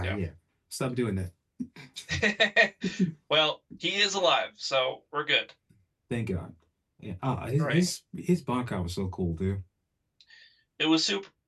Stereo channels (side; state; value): both; identical; correlation 1.00